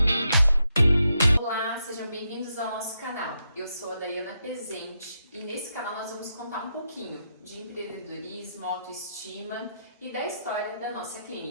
Olá, sejam bem-vindos ao nosso canal. Eu sou a Dayana Pezente e nesse canal nós vamos contar um pouquinho de empreendedorismo, autoestima e da história da nossa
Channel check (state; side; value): inverted; both; correlation -0.82